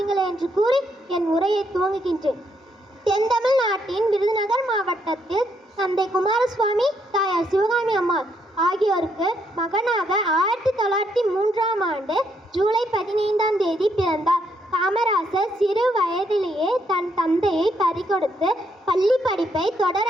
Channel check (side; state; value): both; normal; correlation 0.74